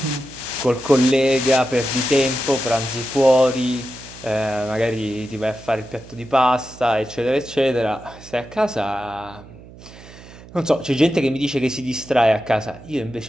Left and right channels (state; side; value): noise; right; hum, 19 dB below the sound